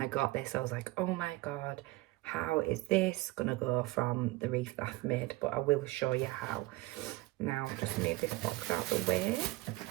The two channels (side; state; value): left; quieter; 20.3 dB